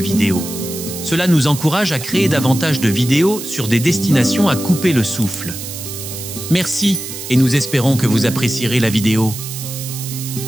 Cela nous encourage à créer davantage de vidéos sur des destinations à couper le souffle. Merci et nous espérons que vous apprécierez la vidéo.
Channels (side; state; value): right; noise; hiss, 9 dB below the sound